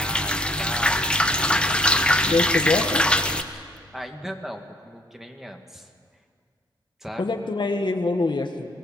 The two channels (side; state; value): both; normal; correlation 0.62